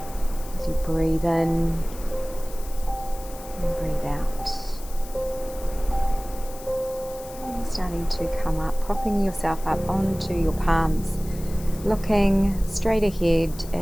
As you breathe in and breathe out. And starting to come up, propping yourself up onto your palms, looking straight ahead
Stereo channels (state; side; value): noise; left; hiss, 17 dB below the sound